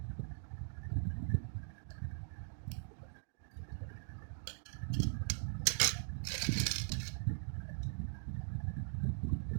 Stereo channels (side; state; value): left; silent; digital silence